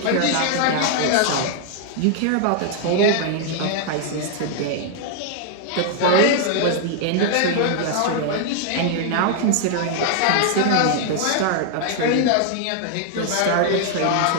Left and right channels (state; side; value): different; both; correlation 0.00